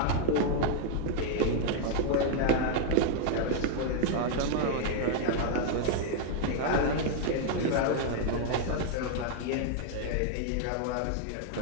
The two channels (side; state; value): both; different; correlation 0.00